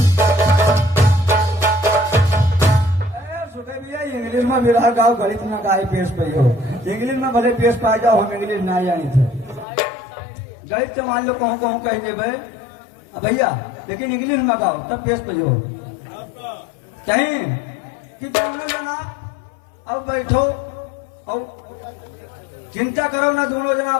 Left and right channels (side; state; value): right; drops out; at 9.7 s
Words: इंग्लिश में विरह गाओ, गणित में गाय पेश पई हो। इंग्लिश में भले पेश पा जाओ, हम इंग्लिश ना जानी थे। गणित तो मान लो कहूँ कहूँ कहेंगे भाई भैया, लेकिन इंग्लिश में गाओ तब पेश पई हो। कहीं कि दोनों जना अब बैठो और चिंता करो ना, दोनों जना